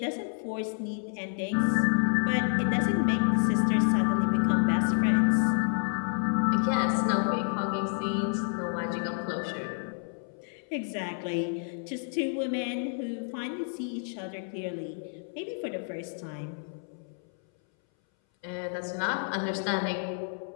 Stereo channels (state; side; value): silent; right; 58 dB below the other